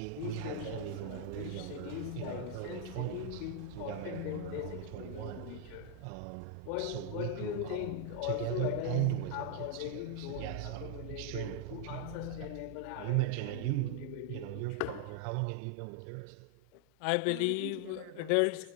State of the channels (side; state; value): both; different; correlation 0.00